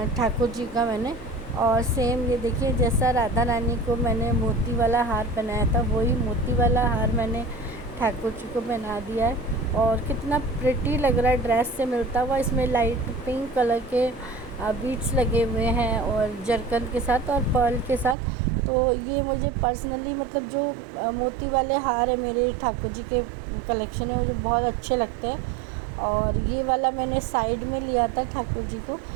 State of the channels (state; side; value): drops out; left; at 18.2 s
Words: ठाकुर जी का मैंने। और सेम ये देखिए, जैसा राधा रानी को मैंने मोती वाला हार पहनाया था, वही मोती वाला हार मैंने ठाकुर जी को पहना दिया है। और कितना प्रिटी लग रहा है, ड्रेस से मिलता हुआ। इसमें लाइट पिंक कलर के बीड्स लगे हुए हैं और जरकन के साथ और पर्ल के साथ। तो ये मुझे पर्सनली, मतलब जो मोती वाले हार है मेरे ठाकुर जी के कलेक्शन है, मुझे बहुत अच्छे लगते हैं। और ये वाला मैंने साइड में लिया था ठाकुर जी को,